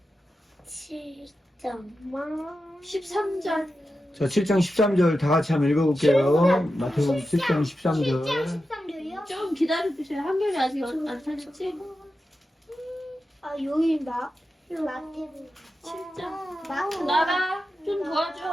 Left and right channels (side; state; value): both; normal; correlation 0.90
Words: 7장. 13절. 자, 7장 13절 다 같이 한번 읽어볼게요. 마태복음 7장 13절. 13절이요? 좀 기다려주세요. 한결이 아직 안 찾았지? 아, 여기인가? 마태복음 7장. 나가. 좀